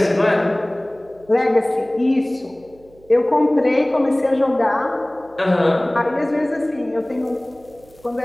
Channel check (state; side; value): noise; right; hum, 28 dB below the sound